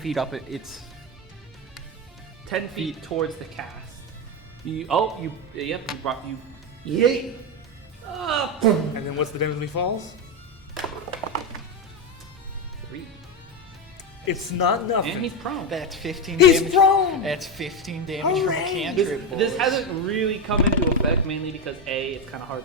up. It's 10 feet towards the cast. You brought you. Yay! Up! And then what's the damage when he falls? 3. It's not nothing. And he's prone. That's 15 He's damage. prone! That's 15 damage from a Hooray! cantrip, boys. This hasn't really come into effect mainly because A, it's kind of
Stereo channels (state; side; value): normal; both; correlation 0.11